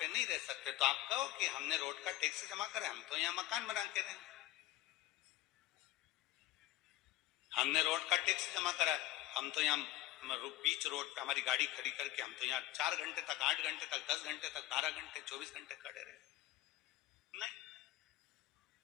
नहीं रह सकते। तो आप कहो कि हमने रोड का टैक्स जमा करा, हम तो यहाँ मकान बना के रहेंगे। हमने रोड का टैक्स जमा करा, हम तो यहाँ बीच रोड पे हमारी गाड़ी खड़ी करके हम तो यहाँ 4 घंटे तक, 8 घंटे तक, 10 घंटे तक, 12 घंटे, 24 घंटे खड़े रहे। नहीं,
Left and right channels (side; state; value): right; quieter; 15.7 dB